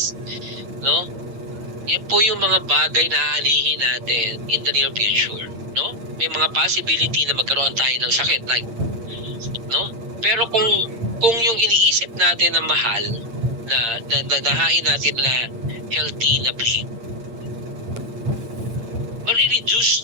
no? Yan po yung mga bagay na aanihin natin in the near future, no? May mga possibility na magkaroon tayo ng sakit, like, no? Pero kung yung iniisip natin na mahal, na nahain natin na healthy na plate,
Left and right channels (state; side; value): late; left; 8.8 ms